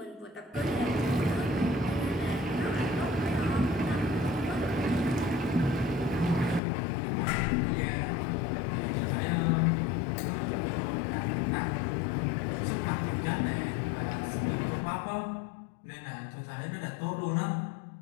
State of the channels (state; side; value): drops out; right; at 6.6 s